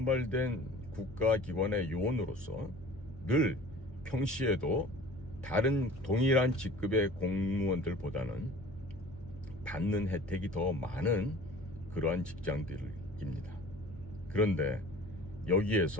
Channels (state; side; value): normal; both; correlation 0.45